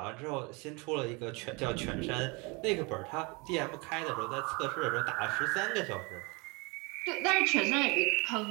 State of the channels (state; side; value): quieter; left; 28.4 dB